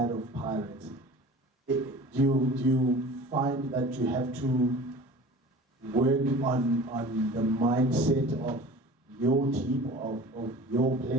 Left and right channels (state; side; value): normal; both; correlation 0.41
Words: of Pirates. Do you find that you have to work on the mindset of your team, of your